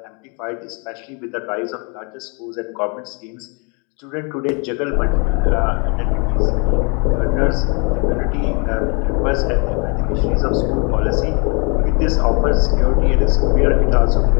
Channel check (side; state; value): right; quieter; 33.8 dB